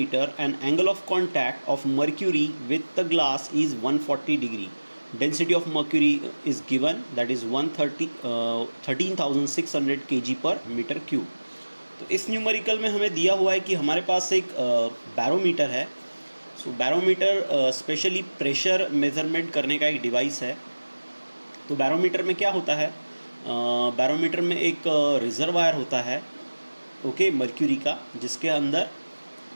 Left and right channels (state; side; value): inverted; both; correlation -1.00